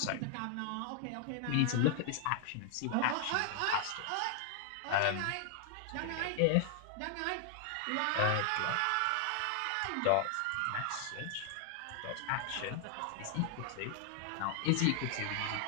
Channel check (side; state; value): both; different; correlation 0.00